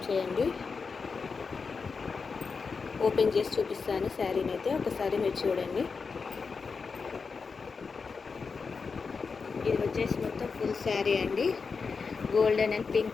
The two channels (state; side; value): quieter; right; 5.0 dB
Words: చేయండి. ఓపెన్ చేసి చూపిస్తాను శారీని అయితే ఒకసారి మీరు చూడండి. ఇది వచ్చేసి మొత్తం ఫుల్ శారీ అండి. Golden and pink